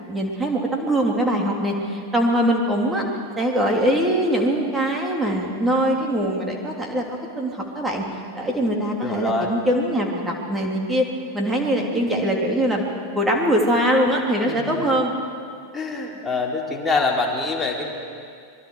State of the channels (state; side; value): normal; both; correlation 0.42